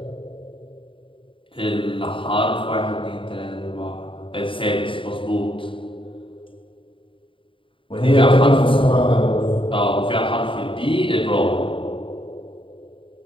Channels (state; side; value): late; right; 0.25 ms